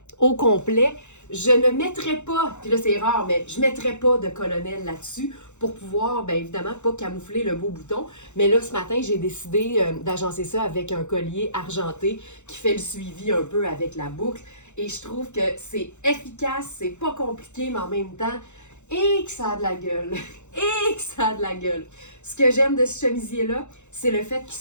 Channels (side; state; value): right; late; 0.83 ms